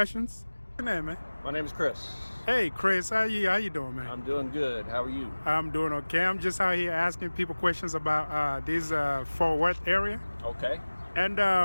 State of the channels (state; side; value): inverted; both; correlation -1.00